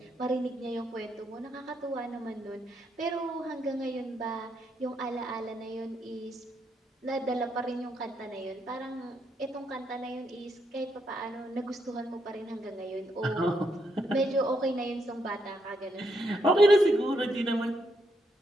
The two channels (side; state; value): both; normal; correlation 0.78